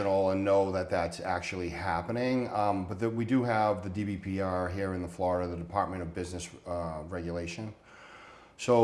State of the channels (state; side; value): identical; both; correlation 1.00